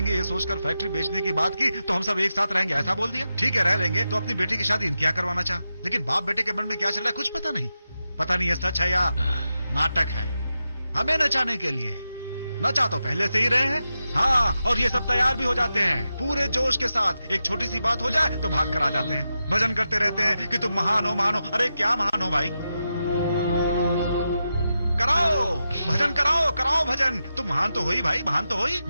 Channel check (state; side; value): inverted; both; correlation -0.89